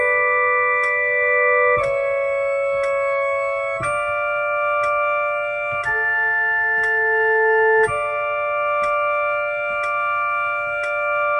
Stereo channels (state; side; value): identical; both; correlation 1.00